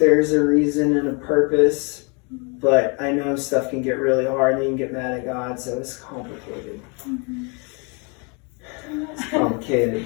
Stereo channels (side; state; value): right; quieter; 33.1 dB